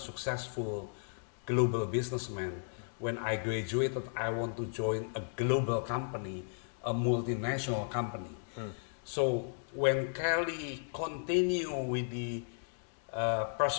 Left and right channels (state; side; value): silent; right; digital silence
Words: global businessman. When I graduated, I want to join a global company, a multinational company. So when Kelley continue with the